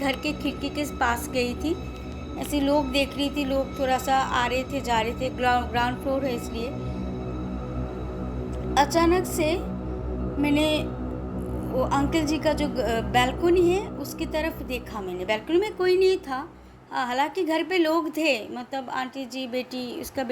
के खिड़की के पास गई थी, ऐसे लोग देख रही थी, लोग थोड़ा सा आ रहे थे जा रहे थे, ग्राउंड फ्लोर है इसलिए। अचानक से मैंने वो अंकल जी का जो बैल्कनी है उसकी तरफ देखा। मैंने बैल्कनी में कोई नहीं था, हालांकि घर पे लोग थे, मतलब आंटी जी बेटी, उसका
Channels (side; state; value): both; identical; correlation 1.00